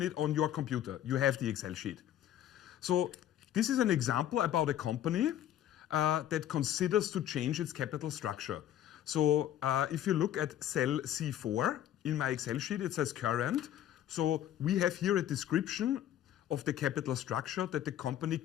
it on your computer. You have the Excel sheet. So this is an example about a company that considers to change its capital structure. So if you look at cell C4 in my Excel sheet, it says current. So we have here a description of the capital structure that the company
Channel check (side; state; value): right; quieter; 11.5 dB